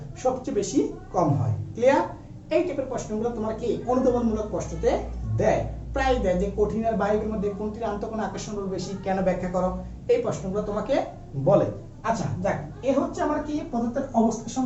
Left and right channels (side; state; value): both; identical; correlation 1.00